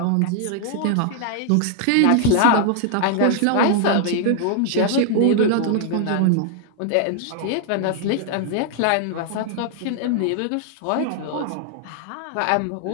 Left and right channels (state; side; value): different; both; correlation 0.00